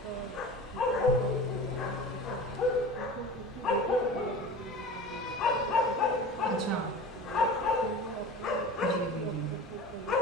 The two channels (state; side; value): normal; both; correlation 0.35